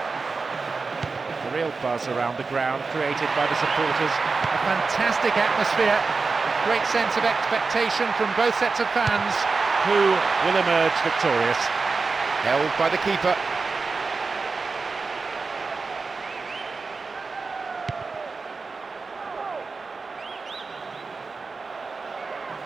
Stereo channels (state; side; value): quieter; left; 4.3 dB